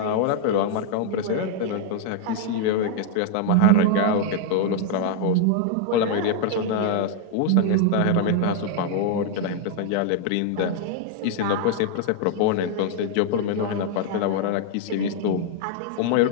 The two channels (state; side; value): different; both; correlation 0.00